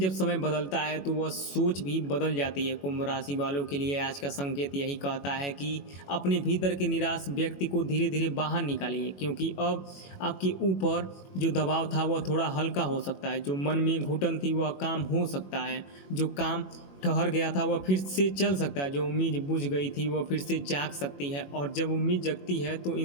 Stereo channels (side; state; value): right; late; 21 ms